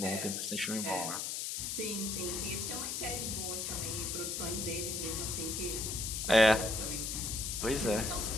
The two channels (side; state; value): left; noise; hiss, 2 dB below the sound